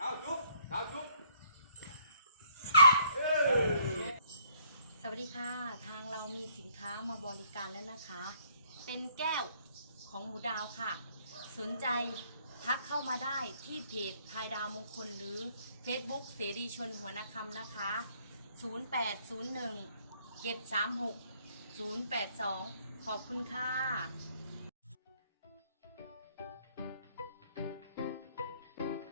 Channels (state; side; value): inverted; both; correlation -0.64